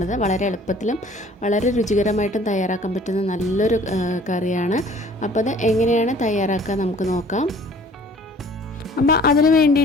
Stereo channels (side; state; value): both; normal; correlation 0.52